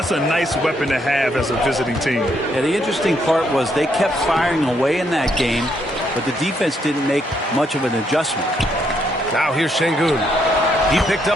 a nice weapon to have as a visiting team. Yeah, the interesting part was they kept firing away in that game, but the defense didn't make much of an adjustment. Now here's Şengün. He picked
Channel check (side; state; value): both; normal; correlation 0.74